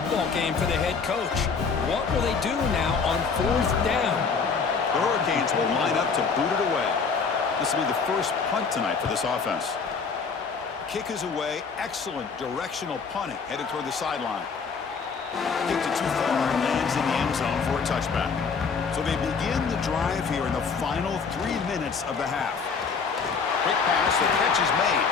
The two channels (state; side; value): quieter; right; 5.4 dB